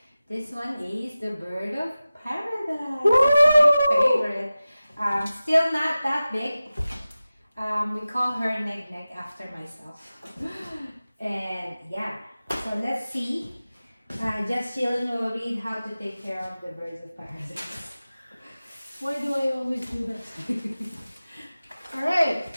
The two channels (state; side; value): inverted; both; correlation -0.96